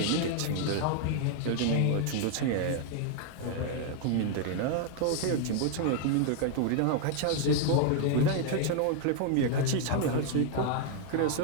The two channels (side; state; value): both; different; correlation 0.00